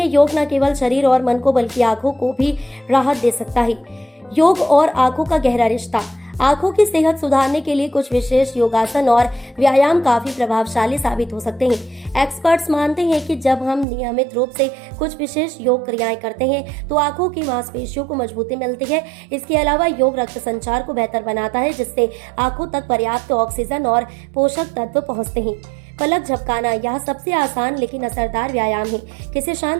योग न केवल शरीर और मन को बल्कि आंखों को भी राहत दे सकता है। योग और आंखों का गहरा रिश्ता। आंखों की सेहत सुधारने के लिए कुछ विशेष योगासन और व्यायाम काफी प्रभावशाली साबित हो सकते हैं। एक्सपर्ट्स मानते हैं कि जब हम नियमित रूप से कुछ विशेष योग क्रियाएं करते हैं तो आंखों की मांसपेशियों को मजबूती मिलती है। इसके अलावा योग रक्त संचार को बेहतर बनाता है, जिससे आंखों तक पर्याप्त ऑक्सीजन और पोषक तत्व पहुंचते हैं। पलक झपकाना, यह सबसे आसान लेकिन असरदार व्यायाम है। किसी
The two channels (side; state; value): left; drops out; at 13.9 s